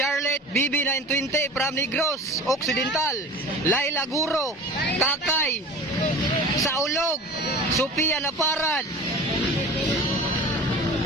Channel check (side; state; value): both; normal; correlation 0.37